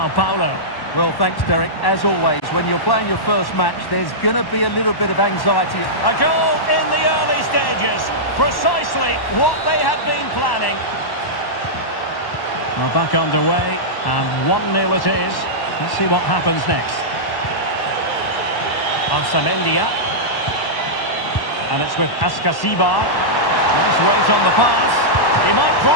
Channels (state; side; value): late; right; 1.1 ms